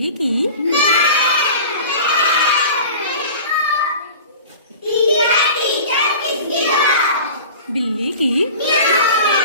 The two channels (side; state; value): both; inverted; correlation -0.38